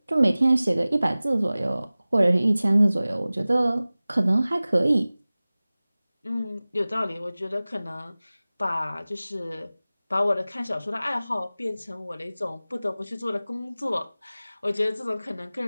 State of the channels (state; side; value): inverted; both; correlation -0.98